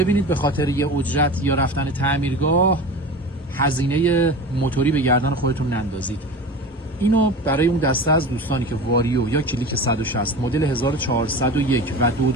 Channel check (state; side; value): normal; both; correlation 0.32